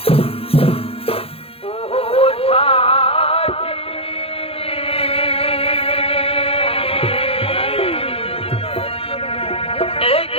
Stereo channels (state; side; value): late; right; 0.28 ms